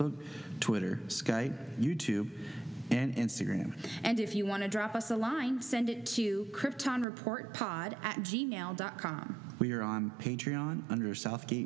Twitter, Skype, YouTube, and Instagram. And if you want to drop us a line, send it to kryptonreportpod@gmail.com. We are on Patreon under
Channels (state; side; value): drops out; left; at 7.1 s